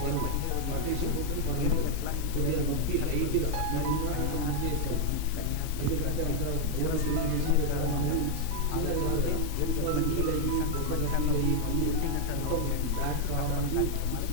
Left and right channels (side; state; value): both; different; correlation 0.00